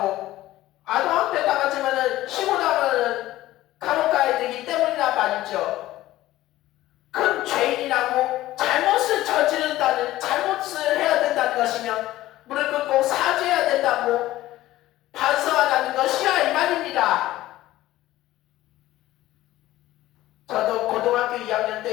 아동학대 당하지면은 신고 나면은 감옥 가야 되기 때문이란 말이죠. 큰 죄인이라고 잘못을 저지른다는, 잘못을 해야 된다는 것이면 무릎 꿇고 사죄해야 된다고 반성하라는 것이야, 이 말입니다. 저도 고등학교 2학년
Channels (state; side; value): quieter; right; 15.6 dB